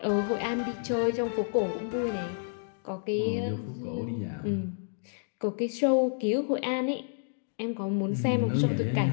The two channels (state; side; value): silent; right; digital silence